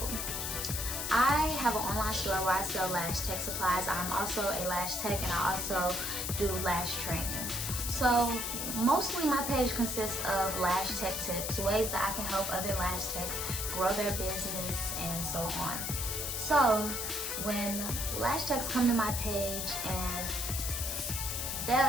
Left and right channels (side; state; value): left; noise; hiss, 3 dB below the sound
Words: I have an online store where I sell lash tech supplies. I'm also a lash tech, and I also do lash training. So mostly my page consists of lash tech tips, ways that I can help other lash techs grow their business and so on. So when lash techs come to my page,